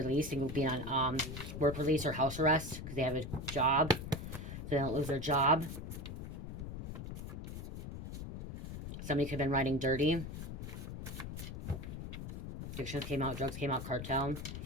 and being on work release or house arrest because they have a job, so they don't lose their job. Somebody could have been riding dirty. Addictions came out, drugs came out, cartel.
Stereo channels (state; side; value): noise; left; rumble, 7 dB below the sound